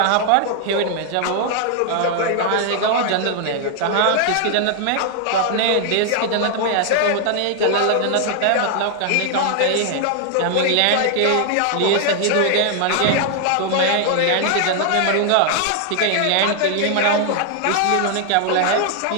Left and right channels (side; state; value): both; different; correlation 0.00